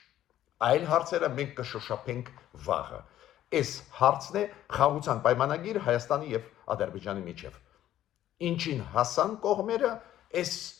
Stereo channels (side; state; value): right; quieter; 12.5 dB